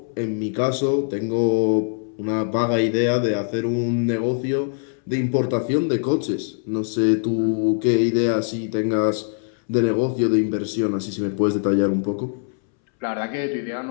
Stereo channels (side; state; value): right; silent; 64 dB below the other